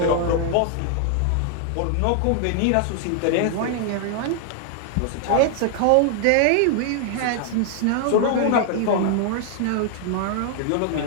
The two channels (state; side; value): different; both; correlation 0.00